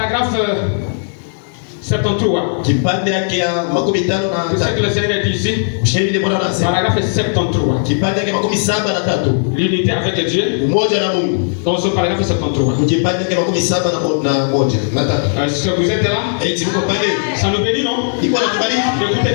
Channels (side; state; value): right; silent; digital silence